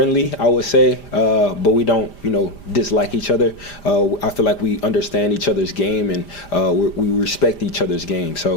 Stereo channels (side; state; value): right; late; 5.0 ms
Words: I would say, but we don't, you know, dislike each other. I feel like we understand each other's game, and we respect each other's game.